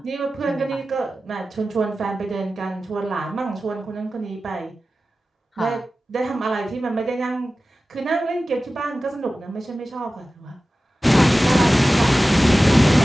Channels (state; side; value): normal; both; correlation 0.95